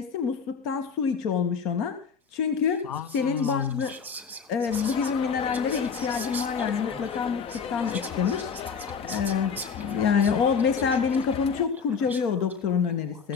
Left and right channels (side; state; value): right; quieter; 6.0 dB